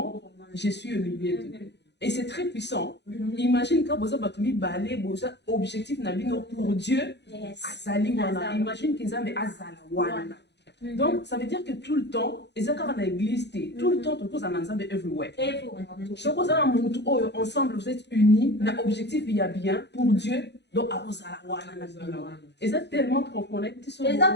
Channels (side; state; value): right; late; 0.50 ms